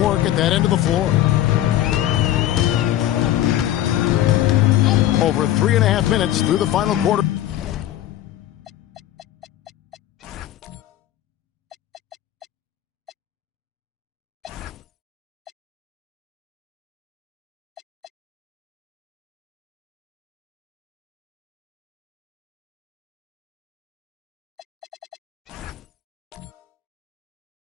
at that end of the floor. Over 3.5 minutes through the final quarter.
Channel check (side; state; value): right; quieter; 12.9 dB